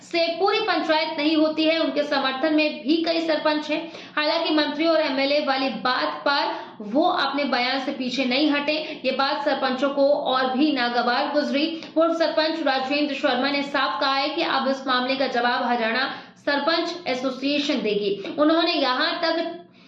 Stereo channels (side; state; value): both; identical; correlation 1.00